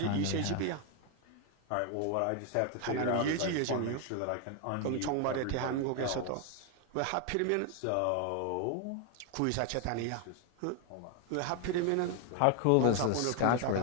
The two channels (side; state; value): both; different; correlation 0.01